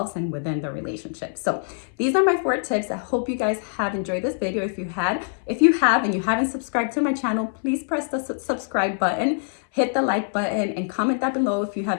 and within the relationship. So these are my 4 tips. I hope you guys have enjoyed this video. If you have and you haven't subscribed to my channel, please press the subscribe button, hit the like button, and comment down below if you have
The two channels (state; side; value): silent; right; 60 dB below the other